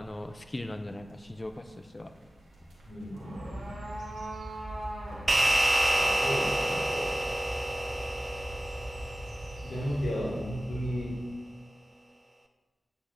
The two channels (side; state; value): both; normal; correlation 0.97